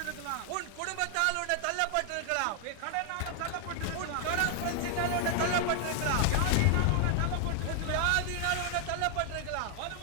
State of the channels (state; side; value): different; both; correlation 0.00